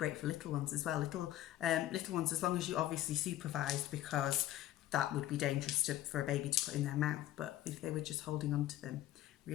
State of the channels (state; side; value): quieter; right; 13.9 dB